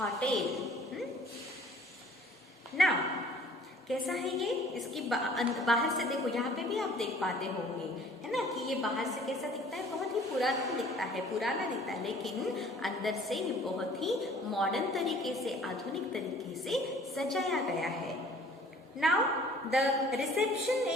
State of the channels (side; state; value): both; normal; correlation 0.52